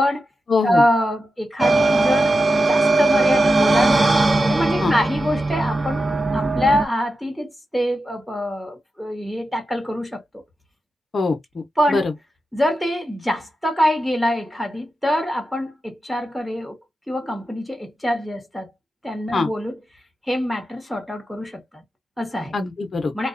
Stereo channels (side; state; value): both; normal; correlation 0.90